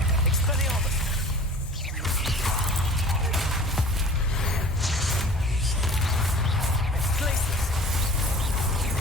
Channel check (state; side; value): normal; both; correlation 0.45